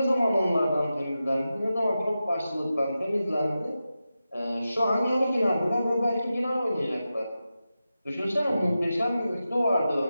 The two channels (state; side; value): inverted; both; correlation -0.92